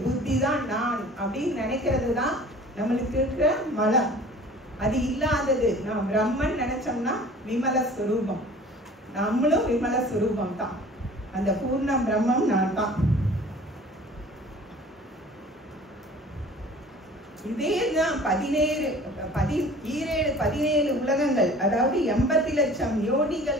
புத்தி தான் நான் அப்படின்னு நினைக்கிறது தான் நம்மளுக்கு இருக்கிற மலம். அது இல்லாதது நாம் பிரம்மன் நினைச்சோம்னா விமல ஸ்வரூபம். நம்மளும் விமல ஸ்வரூபம் தான். அந்த பூர்ணம் பிரம்மம் நான் தான். இதேதான் 17 உலகங்கள், அதாவது 80 லட்சம்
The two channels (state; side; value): normal; both; correlation 0.46